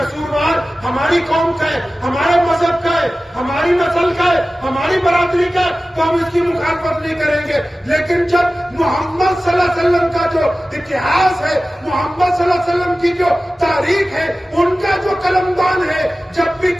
ہماری قوم کا ہے، ہمارے مذہب کا ہے، ہماری نسل کا ہے، ہماری برادری کا ہے، تو ہم اس کی مخالفت نہیں کریں گے۔ لیکن جب محمد صلی اللہ علیہ وسلم کا جو اتہاس ہے، محمد صلی اللہ علیہ وسلم کی جو تاریخ ہے، ان کا جو قلمدان ہے، جب بھی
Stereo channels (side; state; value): both; normal; correlation 0.96